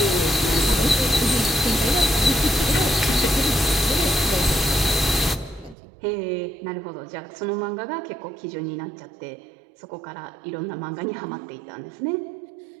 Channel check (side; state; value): left; drops out; at 5.8 s